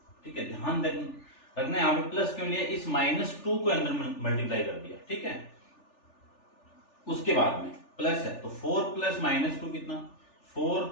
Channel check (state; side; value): late; right; 3.4 ms